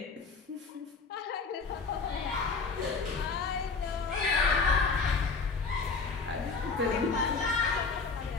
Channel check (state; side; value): quieter; right; 4.5 dB